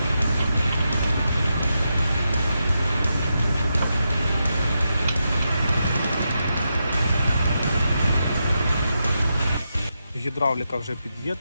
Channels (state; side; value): inverted; both; correlation -0.86